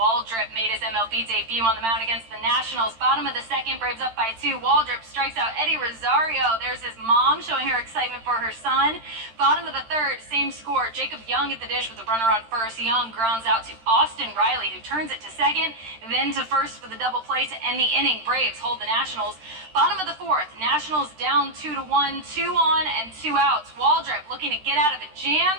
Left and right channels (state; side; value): late; left; 13 ms